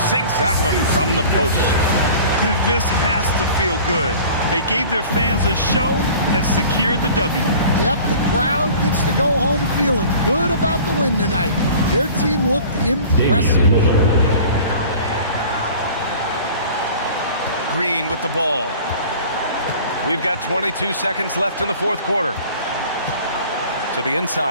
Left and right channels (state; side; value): inverted; both; correlation -0.44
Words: Sinks that one from the post. This has to feel good. They gave their fans a show and secured the W. Yep, the crowd gets to go home feeling good about the win tonight. Their team looked impressive. Green with the ball. We've got 22 seconds left in the fourth quarter. To the